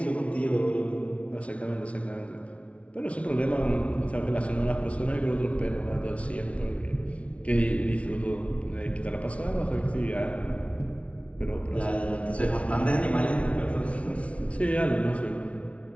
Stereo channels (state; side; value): late; right; 0.063 ms